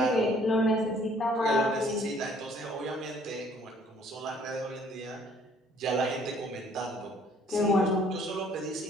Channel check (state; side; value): normal; both; correlation 0.60